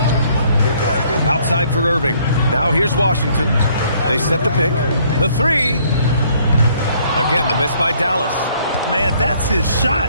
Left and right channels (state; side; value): inverted; both; correlation -0.63